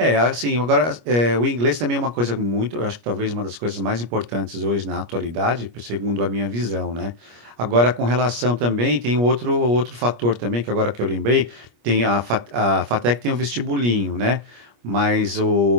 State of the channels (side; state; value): left; late; 25 ms